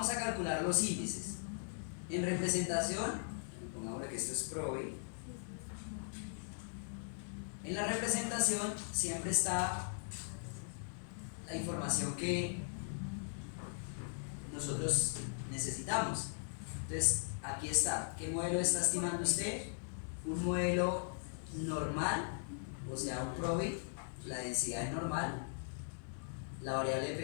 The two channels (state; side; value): silent; right; digital silence